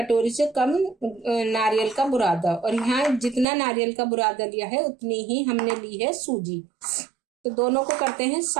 से कम नारियल का बुरादा। और यहाँ जितना नारियल का बुरादा लिया है उतनी ही हमने ली है सूजी। तो दोनों को करते हैं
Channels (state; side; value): drops out; left; at 3.5 s